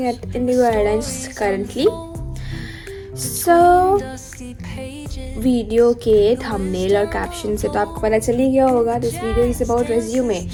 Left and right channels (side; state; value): both; identical; correlation 1.00